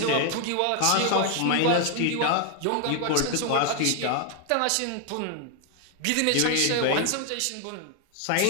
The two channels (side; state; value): both; different; correlation 0.00